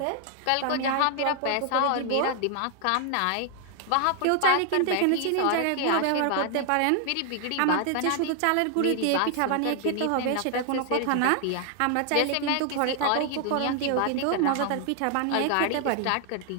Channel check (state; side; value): different; both; correlation 0.00